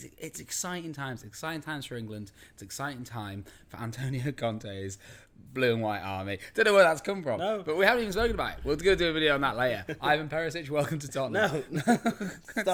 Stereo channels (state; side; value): identical; both; correlation 1.00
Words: exciting times. Exciting times for England. It's exciting time for Antonio Conte's blue and white army. Don't know where that's come from. No. But we haven't even spoken about it. We're going to do a video on that later. Ivan Perisic, welcome to Tottenham. No.